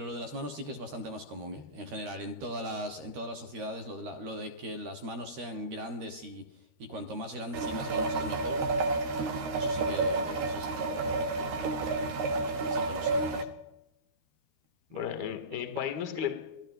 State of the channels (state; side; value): late; left; 13 ms